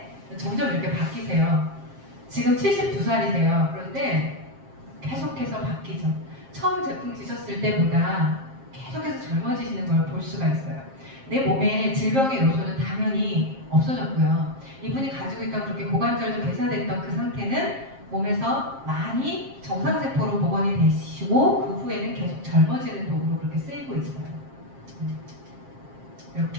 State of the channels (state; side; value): late; left; 7.5 ms